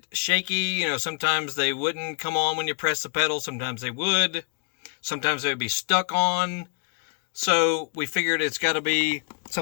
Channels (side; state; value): right; quieter; 30.6 dB